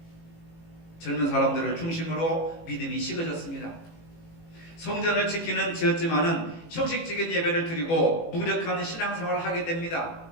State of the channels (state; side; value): late; right; 18 ms